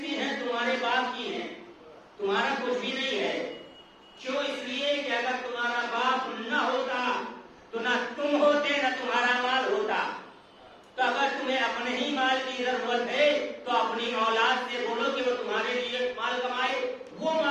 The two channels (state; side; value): identical; both; correlation 1.00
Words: کی ہے؟ تمہارے باپ کی ہے، تمہارا کچھ بھی نہیں ہے۔ کیوں؟ اس لیے کہ اگر تمہارا باپ نہ ہوتا تو نہ تم ہوتے، نہ تمہارا مال ہوتا۔ تو اگر تمہیں اپنے ہی مال کی ضرورت ہے تو اپنی اولاد سے بولو کہ وہ تمہارے لیے مال کمائے، وہ